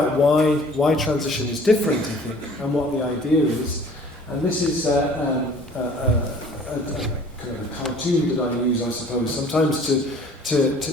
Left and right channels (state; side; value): normal; both; correlation 0.51